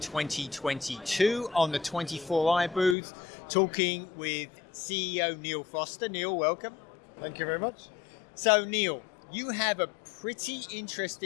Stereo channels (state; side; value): drops out; right; at 3.0 s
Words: 2022 on the 24i booth talking with CEO Neale Foster. Neale, welcome. Thank you very much. So Neale, you have a pretty